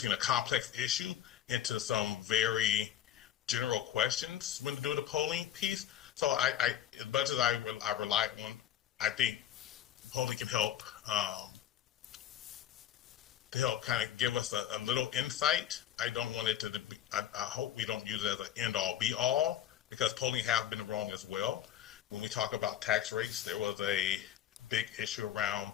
a complex issue into some very general questions when to do the polling piece. So as much as I rely on, I think polling can help to help kind of give us a little insight. I don't want it to be, I hope we don't use it as an end all be all because polling has been wrong as well. When we talk about tax rates, there was a big issue around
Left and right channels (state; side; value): quieter; right; 11.0 dB